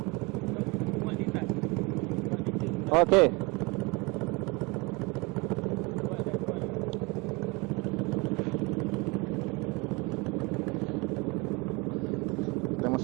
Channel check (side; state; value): left; quieter; 26.1 dB